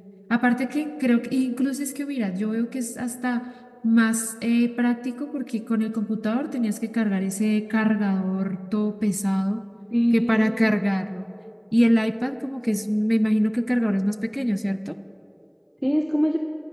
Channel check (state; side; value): identical; both; correlation 1.00